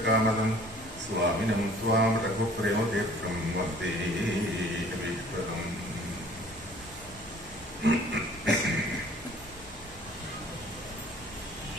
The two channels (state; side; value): normal; both; correlation 0.52